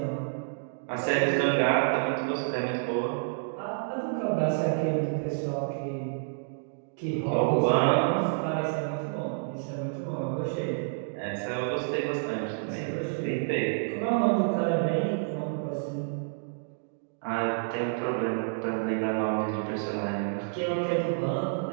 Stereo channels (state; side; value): silent; left; digital silence